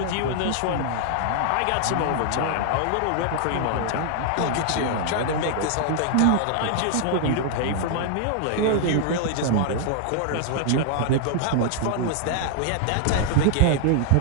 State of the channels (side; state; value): both; different; correlation -0.01